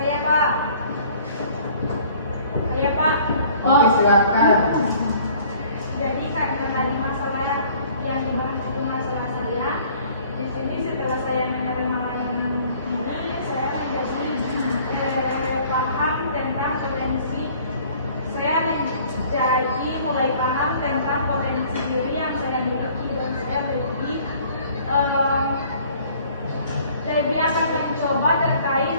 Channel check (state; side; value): inverted; both; correlation -0.54